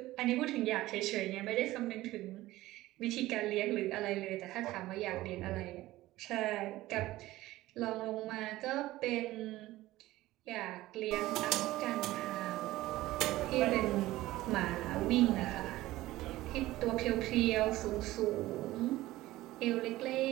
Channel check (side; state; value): left; quieter; 16.9 dB